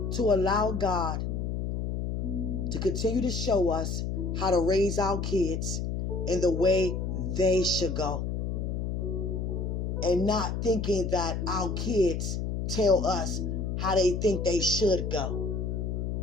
to allow God to continue to show us how to raise our kids in the way they should go. And not thinking that our kids tell us how they think they should go.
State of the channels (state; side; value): noise; left; hum, 2 dB below the sound